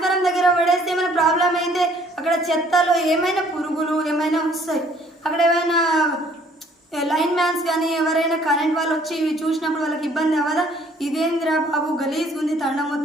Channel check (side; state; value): both; normal; correlation 0.60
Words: దగ్గర పడేస్తే ఏమైనా ప్రాబ్లం అయితే అక్కడ చెత్తలో ఏమైనా పురుగులు ఏమైనా వస్తాయి. అక్కడ ఏమైనా లైన్ మ్యాన్స్ కానీ ఎవరైనా కరెంట్ వాళ్ళు వచ్చి ఇవి చూసినప్పుడు వాళ్ళకి ఇబ్బంది అవ్వదా? ఇదేంద్రా బాబు గలీజ్ ఉంది తండ